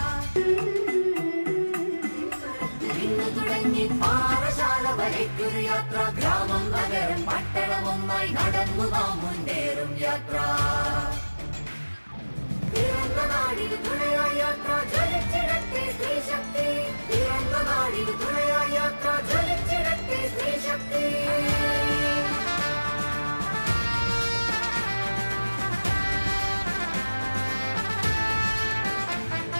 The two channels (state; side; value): inverted; both; correlation -1.00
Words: നിന്ന് തുടങ്ങി പാറശാല വരയ്ക്കൊരു യാത്ര. ഗ്രാമം നഗരം പട്ടണം ഒന്നായി നടന്നു നാം മുന്നേറും യാത്ര. പിറന്ന നാടിന് തുണയായി യാത്ര, ജ്വലിച്ചിടട്ടെ സ്ത്രീശക്തി. പിറന്ന നാടിന് തുണയായി യാത്ര, ജ്വലിച്ചിടട്ടെ സ്ത്രീശക്തി.